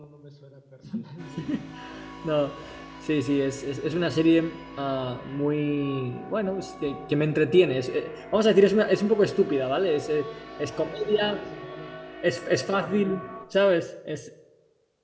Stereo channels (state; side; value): identical; both; correlation 1.00